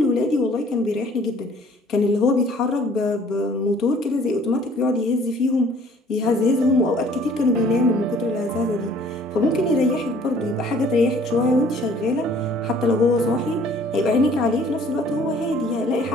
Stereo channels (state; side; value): normal; both; correlation 0.56